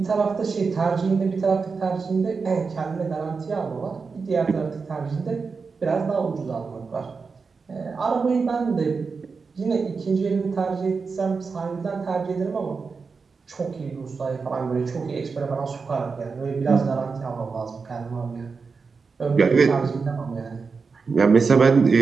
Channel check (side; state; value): left; quieter; 4.9 dB